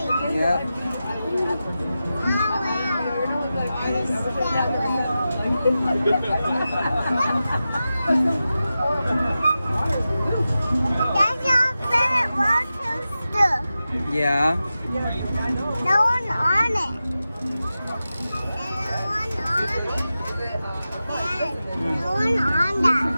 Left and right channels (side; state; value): both; inverted; correlation -0.93